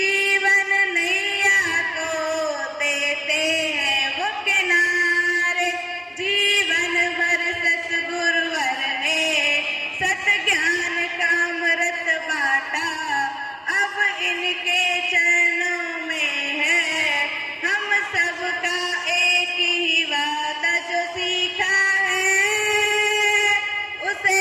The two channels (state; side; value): identical; both; correlation 1.00